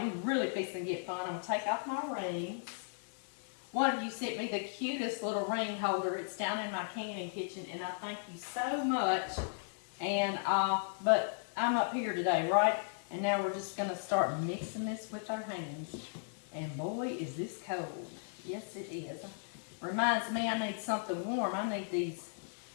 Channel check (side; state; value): right; silent; digital silence